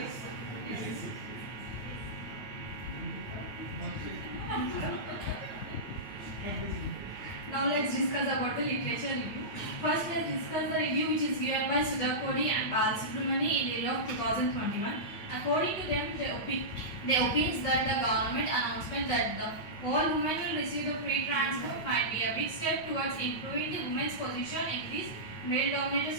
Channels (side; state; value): right; late; 8.9 ms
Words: Now let's discuss about the literature review. First, let's discuss the review which is given by Sudhakodi and Balasubramani in the year of 2021. According to them, they opines that the government announcement that the all women will receive the free transport might be a big step towards improving the women's position in this male-dominated